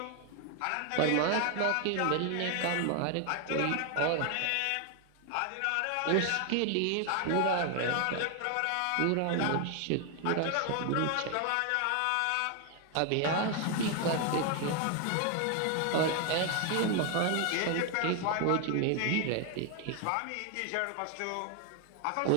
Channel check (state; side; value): different; both; correlation 0.00